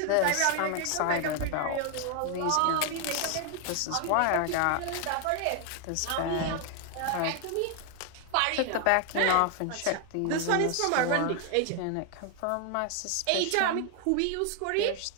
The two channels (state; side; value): different; both; correlation 0.01